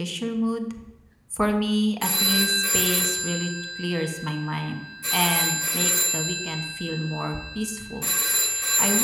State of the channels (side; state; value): both; identical; correlation 1.00